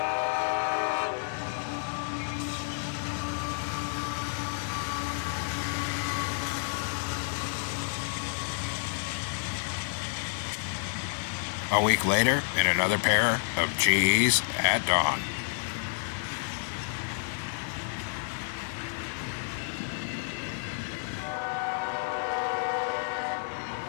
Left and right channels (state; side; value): silent; right; digital silence